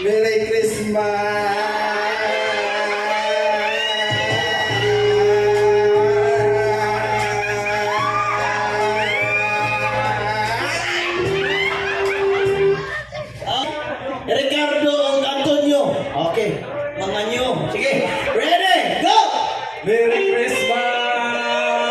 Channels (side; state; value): both; identical; correlation 1.00